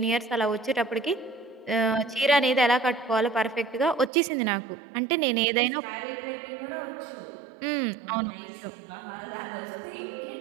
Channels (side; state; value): left; drops out; at 4.1 s